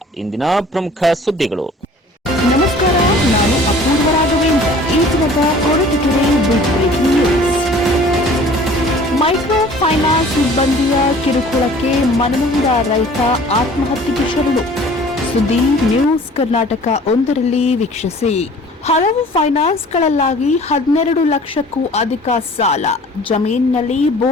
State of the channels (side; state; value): both; normal; correlation 0.49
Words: ಇಂದಿನ ಪ್ರಮುಖ ಸುದ್ದಿಗಳು. ನಮಸ್ಕಾರ, ನಾನು ಅಪೂರ್ವ ರಾಘವೇಂದ್ರ. ಈ ದಿನದ Koratagere big breaking news. Micro finance ಸಿಬ್ಬಂದಿಯ ಕಿರುಕುಳಕ್ಕೆ ಮನನೊಂದ ರೈತ ಆತ್ಮಹತ್ಯೆಗೆ ಶರಣು. ಸುದ್ದಿ ನ್ಯೂಸ್ ಕರ್ನಾಟಕ 1ರಲ್ಲಿ ವೀಕ್ಷಿಸಿ. ಹಲವು ಫೈನಾನ್ಸ್ಗಳಲ್ಲಾಗಿ 12 ಲಕ್ಷಕ್ಕೂ ಅಧಿಕ ಸಾಲ. ಜಮೀನಿನಲ್ಲಿ